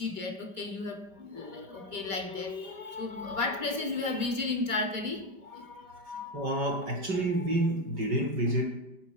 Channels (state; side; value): late; left; 5.1 ms